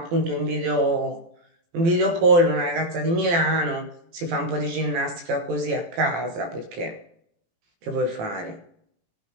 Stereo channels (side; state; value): left; late; 18 ms